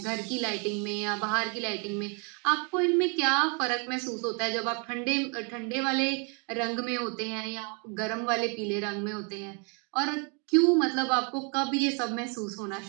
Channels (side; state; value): left; quieter; 36.0 dB